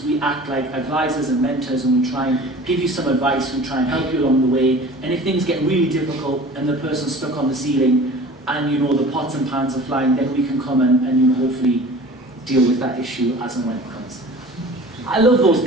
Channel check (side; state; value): both; normal; correlation 0.42